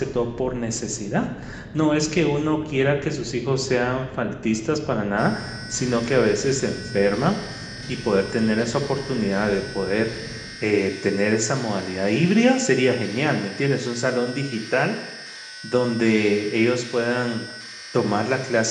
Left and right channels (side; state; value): both; identical; correlation 1.00